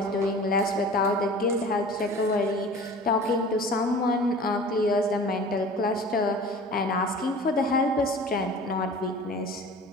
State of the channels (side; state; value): both; normal; correlation 0.41